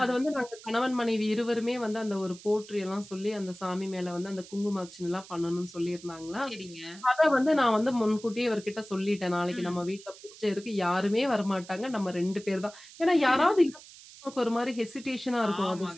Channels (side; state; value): right; noise; hiss, 19 dB below the sound